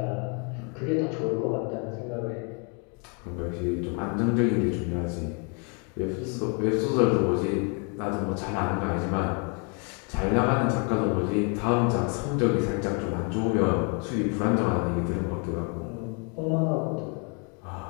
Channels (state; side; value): quieter; right; 36.3 dB